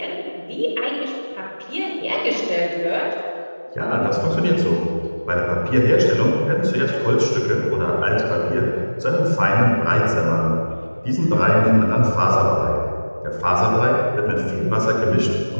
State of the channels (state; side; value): inverted; both; correlation -1.00